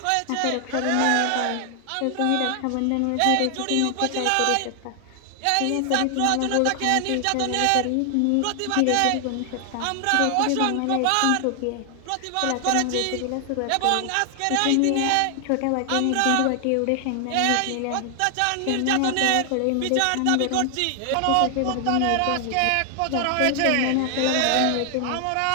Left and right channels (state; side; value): different; both; correlation 0.00